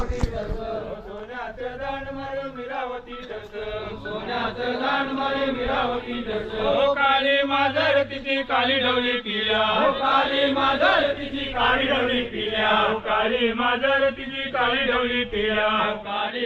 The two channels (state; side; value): identical; both; correlation 1.00